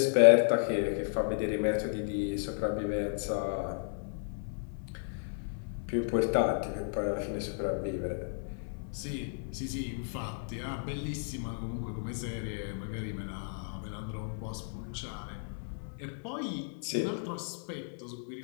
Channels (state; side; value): silent; right; 55 dB below the other